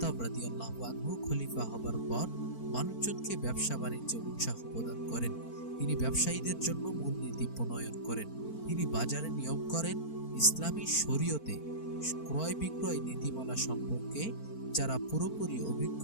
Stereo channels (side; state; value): right; late; 4.4 ms